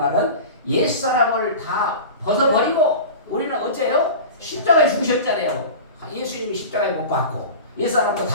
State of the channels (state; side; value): inverted; both; correlation -0.32